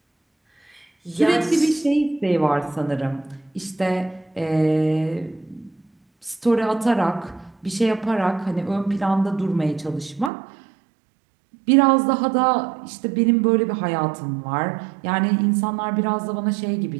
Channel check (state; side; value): drops out; left; at 10.3 s